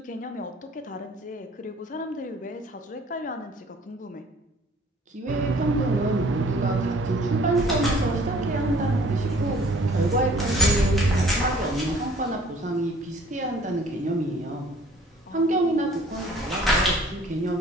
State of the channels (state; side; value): normal; both; correlation 0.54